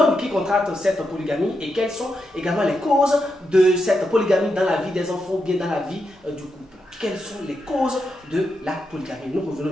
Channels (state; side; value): normal; both; correlation 0.85